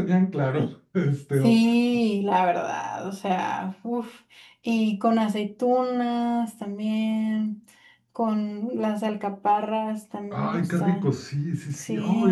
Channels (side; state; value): both; identical; correlation 1.00